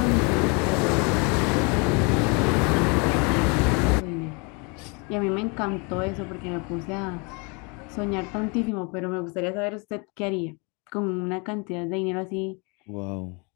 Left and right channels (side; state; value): right; quieter; 31.9 dB